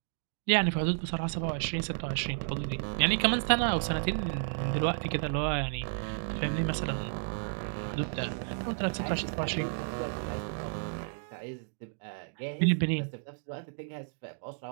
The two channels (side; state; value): left; silent; digital silence